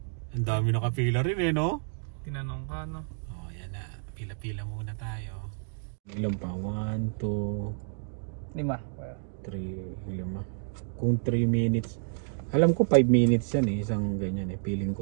Ang dami nakapila rin eh, no? Tinanong ka, no? Oh, yan na. Pila-pila muna tayo. Ilan pa? 1, 2, 5. 3, 5. Kung 3 minutes. Alam ko 5 minutes yan eh. Isang ganyan eh. Feeling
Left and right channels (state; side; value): silent; left; digital silence